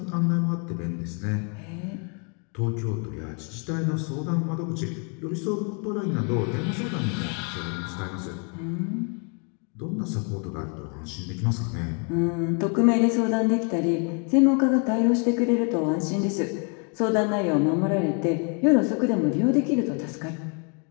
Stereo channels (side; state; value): right; quieter; 37.5 dB